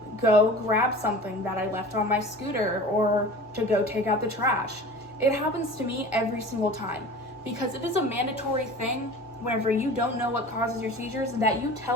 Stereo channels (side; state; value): both; normal; correlation 0.39